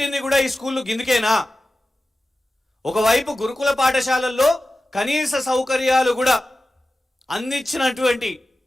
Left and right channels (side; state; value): both; normal; correlation 0.95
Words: కూడా ఈ స్కూళ్ళు గిందుకేనా? ఒకవైపు గురుకుల పాఠశాలల్లో కనీస సౌకర్యాలు కూడా అందించినటువంటి